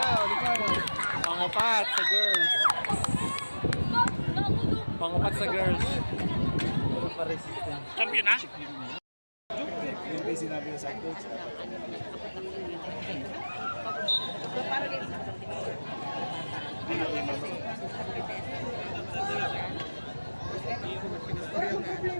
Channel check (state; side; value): inverted; both; correlation -1.00